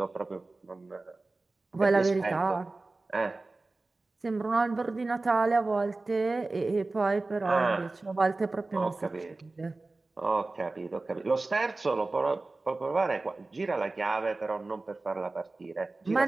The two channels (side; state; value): left; quieter; 3.3 dB